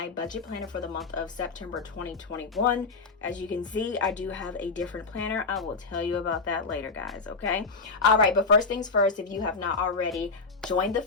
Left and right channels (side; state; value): right; quieter; 4.2 dB